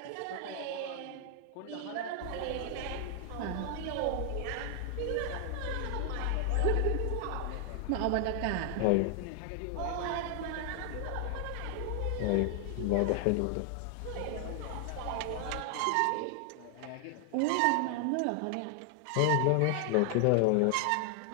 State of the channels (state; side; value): different; both; correlation 0.00